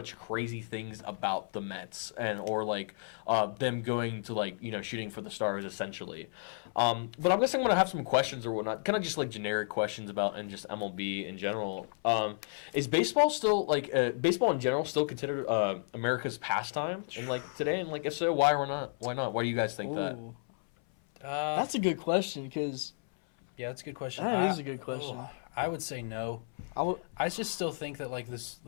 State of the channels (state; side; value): silent; right; 56 dB below the other